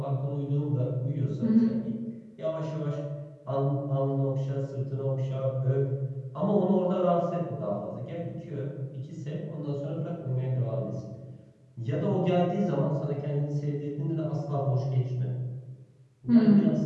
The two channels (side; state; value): both; identical; correlation 1.00